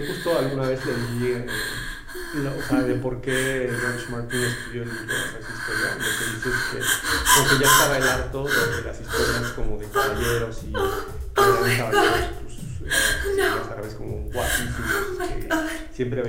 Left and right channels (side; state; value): both; identical; correlation 1.00